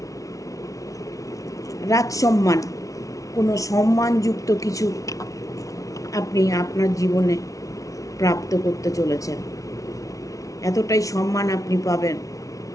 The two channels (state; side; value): late; right; 0.17 ms